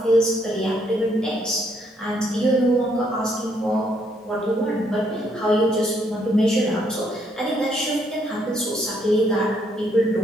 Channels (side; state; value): both; normal; correlation 0.71